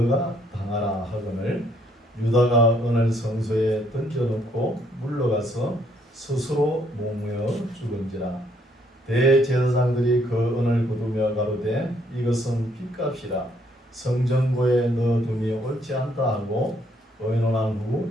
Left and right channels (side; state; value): both; normal; correlation 0.68